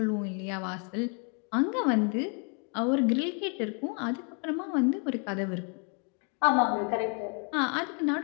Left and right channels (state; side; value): quieter; right; 37.6 dB